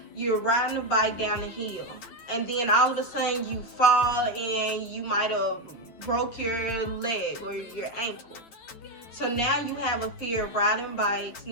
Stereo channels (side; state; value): right; late; 9.0 ms